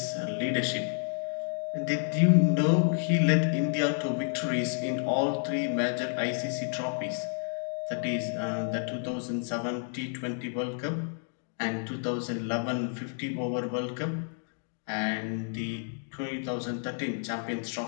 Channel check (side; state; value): right; silent; 58 dB below the other